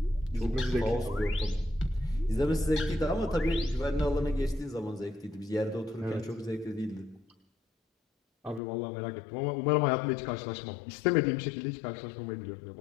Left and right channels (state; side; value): drops out; right; at 8.6 s